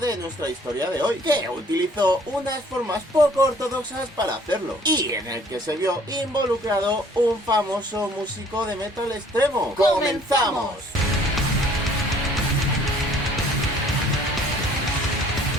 nuestra historia de hoy, que utilizó unas formas poco ortodoxas para hacerlo, y en el que se vio involucrado un famoso músico de metal extremo. ¡Comenzamos!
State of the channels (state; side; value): normal; both; correlation 0.56